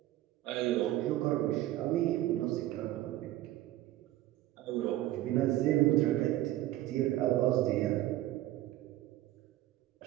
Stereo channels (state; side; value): quieter; left; 15.1 dB